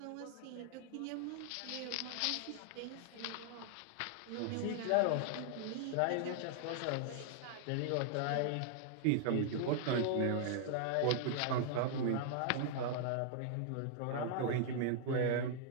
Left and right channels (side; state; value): both; different; correlation -0.01